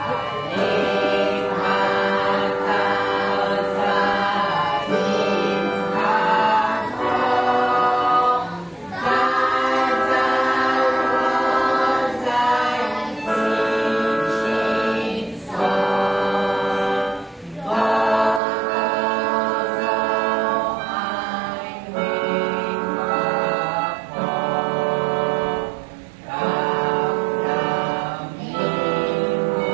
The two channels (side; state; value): left; drops out; at 18.4 s